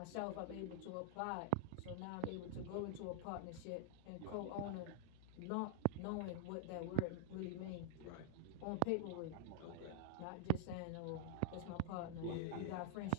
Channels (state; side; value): different; both; correlation -0.01